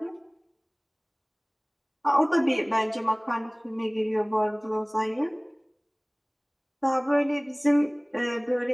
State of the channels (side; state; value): both; identical; correlation 1.00